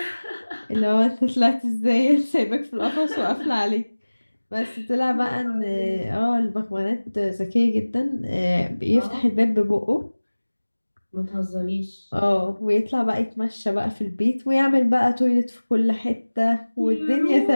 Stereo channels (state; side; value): inverted; both; correlation -1.00